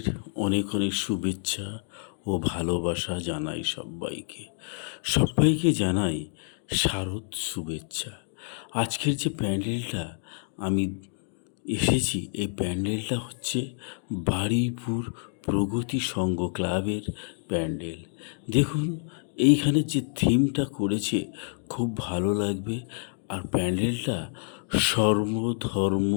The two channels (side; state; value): right; silent; digital silence